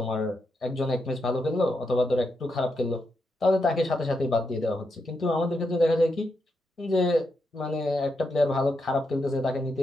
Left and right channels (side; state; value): both; normal; correlation 0.83